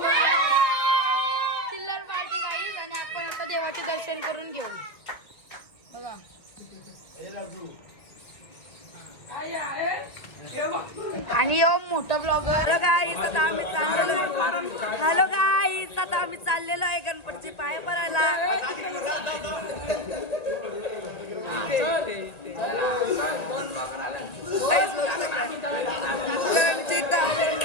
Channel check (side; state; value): right; late; 1.7 ms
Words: चिल्लर पार्टी गाईज. आणि आपण आता देवाचे दर्शन करून घेऊ. बघा आणि यो मोठा ब्लॉगर. Hello guys. आता आम्ही चाललेलो आहे. Hello guys. आता आम्ही चाललेलो आहे गणपतीचे पाय पडायला.